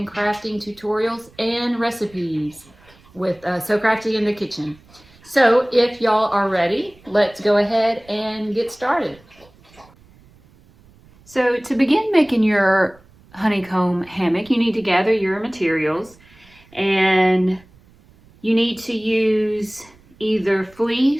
crafting tutorials and recipes with So Crafty in the Kitchen. So if y'all are ready, let's go ahead and get started. So to begin making your honeycomb hammock, you need to gather your materials, and you need to use either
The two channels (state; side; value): noise; right; rumble, 28 dB below the sound